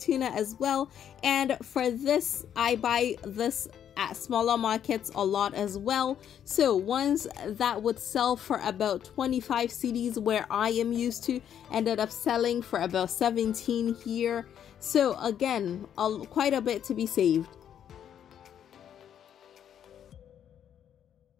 as well, and for this I buy this at smaller markets a lot as well. So ones that would sell for about 25 cedis where I am used to ended up selling for about 17 here. So again, quite a bit to be saved.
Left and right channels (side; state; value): right; quieter; 9.4 dB